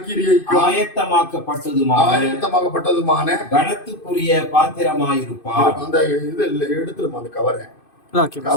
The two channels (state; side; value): late; right; 2.5 ms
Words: ஆயத்தமாக்கப்பட்டதுமான கனத்துக்குரிய பாத்திரமாயிருப்பார். அந்த இது எடுத்துருமா, அந்த